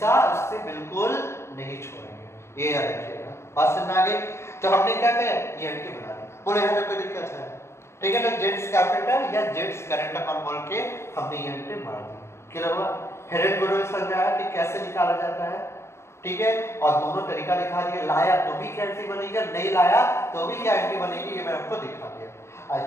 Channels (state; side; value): late; right; 0.13 ms